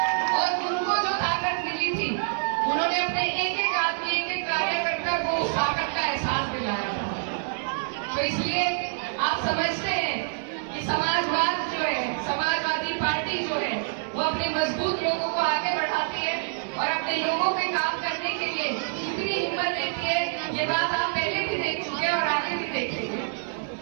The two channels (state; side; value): silent; left; digital silence